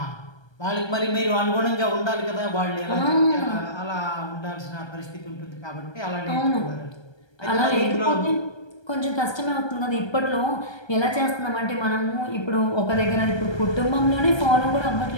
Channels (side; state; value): right; late; 1.3 ms